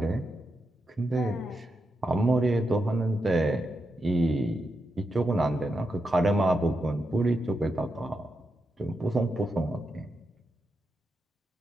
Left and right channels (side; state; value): both; normal; correlation 0.86